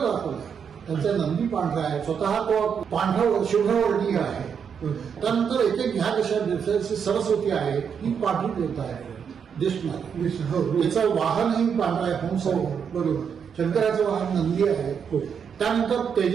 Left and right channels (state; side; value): quieter; left; 7.1 dB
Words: दाखवलं आहे. त्यांचा नंदी पांढरा आहे, स्वतः तो पांढरा शुभ्रवर्णीय आहे. त्यानंतर एक ह्या देशात सरस्वती आहे, ही पांढरी देवता आहे दिसणार. त्याचं वाहनही पांढरा आहे, हंस आहे. बरोबर. शंकराचं वाहन नंदी आहे. त्यानंतर